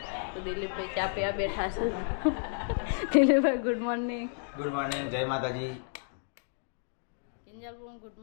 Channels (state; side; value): silent; right; digital silence